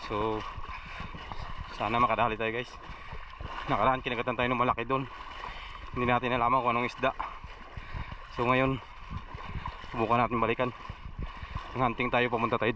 So sana makadali tayo guys. Nakaraan kinagatan tayo ng malaki doon. Hindi natin nalaman kung anong isda. So ngayon subukan natin balikan. Ang hunting tayo, pumunta tayo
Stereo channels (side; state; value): both; identical; correlation 1.00